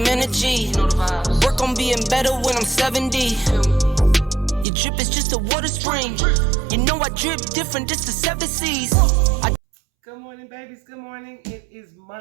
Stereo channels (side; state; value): left; drops out; at 4.7 s